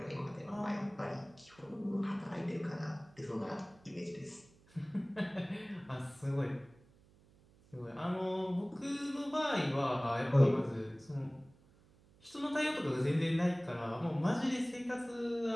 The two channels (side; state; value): right; noise; hum, 28 dB below the sound